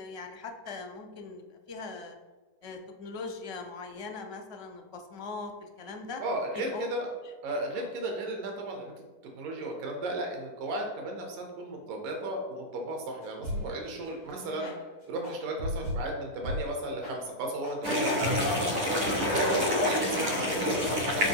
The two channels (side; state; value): left; late; 10 ms